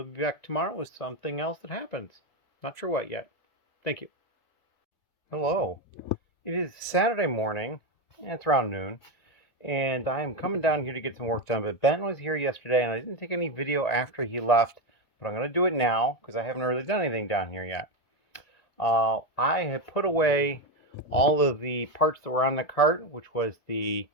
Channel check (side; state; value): right; late; 2.1 ms